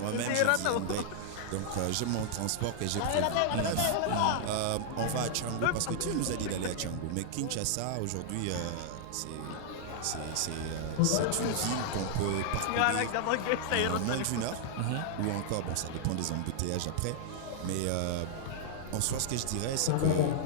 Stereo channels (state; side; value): different; both; correlation -0.01